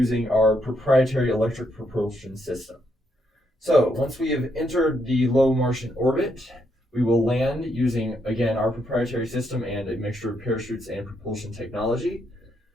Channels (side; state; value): both; normal; correlation 0.77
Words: our proprietary electric propulsion system. So, once we have entered the low Martian orbit, we will land using, again, our proprietary system and a mixture of parachutes and propulsion technology.